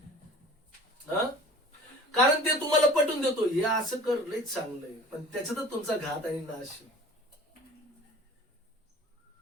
कारण ते तुम्हाला पटवून देतो हे असं कर लयच चांगलं आहे, पण त्याच्यातच तुमचा घात आणि नाश.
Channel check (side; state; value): both; normal; correlation 0.44